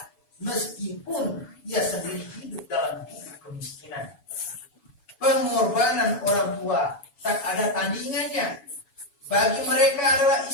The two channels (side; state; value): right; late; 7.1 ms